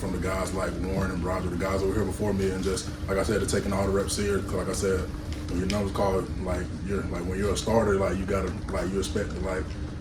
the guys like Warren and Roger, the guys over here before me, and just like I said, taking all the reps serious. Cause like I said, when your number's called, like when you're a starter, like you gotta you expect to like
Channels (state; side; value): identical; both; correlation 1.00